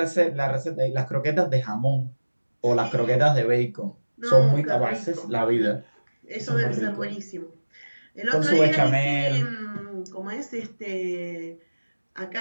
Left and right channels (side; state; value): both; inverted; correlation -1.00